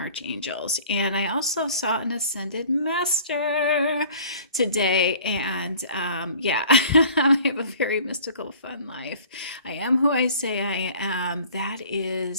and I also saw an ascended master today. And yeah, I have a very mystical, fun life. I am who I say I am.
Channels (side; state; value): both; inverted; correlation -0.48